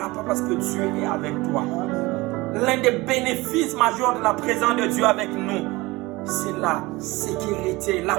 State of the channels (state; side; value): quieter; left; 21.7 dB